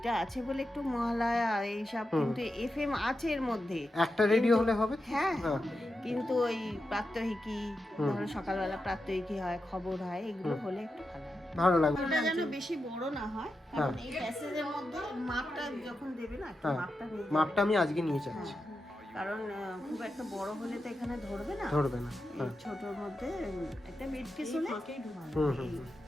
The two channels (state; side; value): normal; both; correlation 0.89